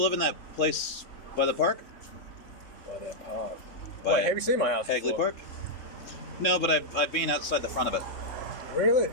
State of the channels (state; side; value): late; right; 3.7 ms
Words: live in that place by the park? By that park. By Wait, have you seen my house Hagley before? Park? No, but I've been outside the front of it. Really?